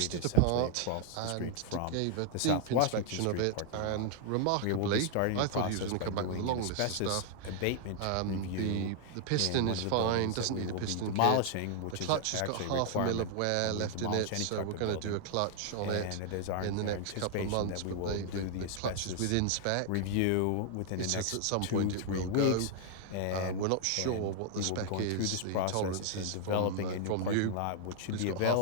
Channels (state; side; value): different; both; correlation 0.00